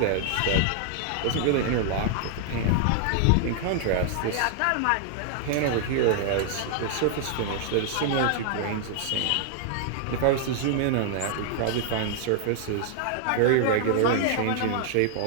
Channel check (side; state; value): both; different; correlation -0.01